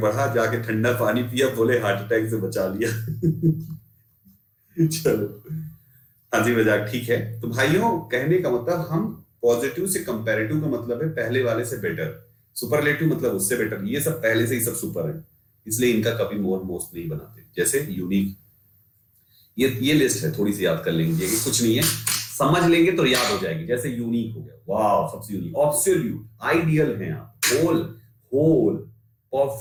जाके ठंडा पानी पिया, बोले हार्ट अटैक से बचा लिया। चलो हंसी मजाक ठीक है। तो भाइयों कहने का मतलब हम पॉजिटिव से कंपैरेटिव का मतलब है पहले वाले से बेटर, सुपरलेटिव मतलब उससे बेटर। ये सब पहले से ही सब सुपर है, इसलिए इनका कभी मोर मोस्ट नहीं बनाते। जैसे यूनिक, ये लिस्ट है, थोड़ी सी याद कर लेंगे, कुछ नहीं है, समझ लेंगे तो याद हो जाएगी। जैसे यूनिक हो गया, वाह सबसे यूनिक, ऑब्सोल्यूट, आइडियल हैं आप, whole, whole,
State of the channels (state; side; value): identical; both; correlation 1.00